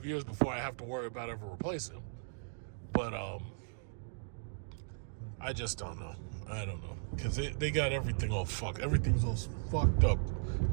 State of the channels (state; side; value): silent; left; digital silence